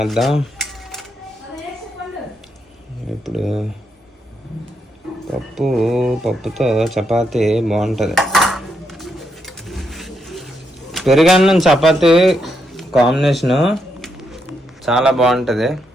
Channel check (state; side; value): normal; both; correlation 0.80